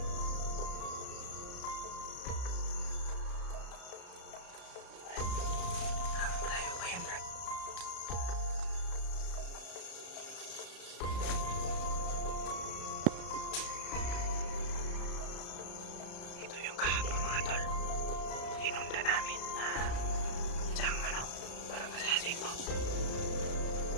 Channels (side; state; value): right; late; 34 ms